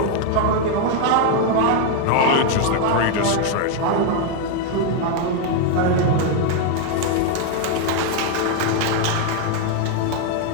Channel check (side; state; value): both; different; correlation 0.01